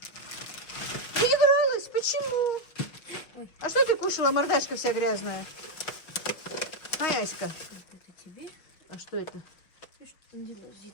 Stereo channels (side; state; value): right; late; 6.1 ms